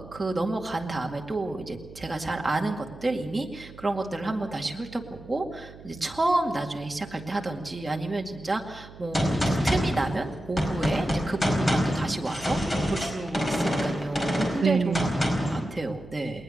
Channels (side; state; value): right; noise; hum, 18 dB below the sound